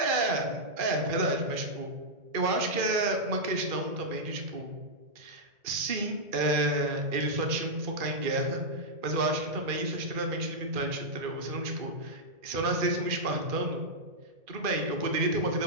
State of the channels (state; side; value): late; left; 2.4 ms